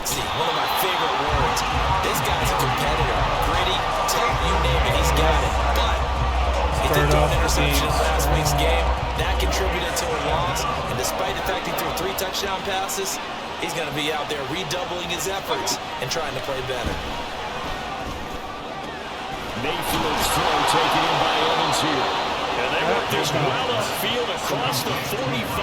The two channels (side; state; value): both; identical; correlation 1.00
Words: One of my favorite words. This guy's a competitor. Gritty, tough, you name it, he's got it. But he did throw an interception in last week's game. That contributed to a loss. And despite the fact he threw 3 touchdown passes, he's going to be out there redoubling his efforts and trying to play better. Mayfield's throw taken in by Evans here. And they work this well upfield across the